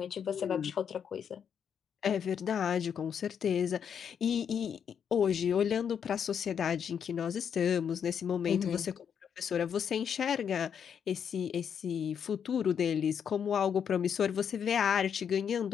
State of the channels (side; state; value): right; quieter; 7.8 dB